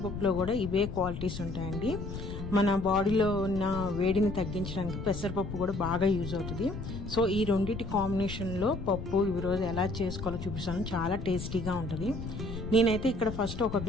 కూడా ఇవే క్వాలిటీస్ ఉంటాయండి. మన బాడీలో ఉన్న వేడిని తగ్గించడానికి పెసరపప్పు కూడా బాగా యూజ్ అవుతుంది. సో ఈ రెండింటి కాంబినేషన్లో పప్పు ఈరోజు ఎలా చేసుకోవాలో చూపిస్తాను. చాలా టేస్టీగా ఉంటుంది. నేనైతే ఇక్కడ ఫస్ట్ ఒక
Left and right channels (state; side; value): noise; left; rumble, 7 dB below the sound